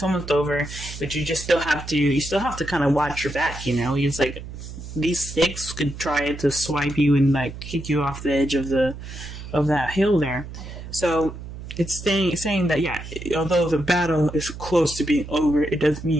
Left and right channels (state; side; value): noise; right; hum, 11 dB below the sound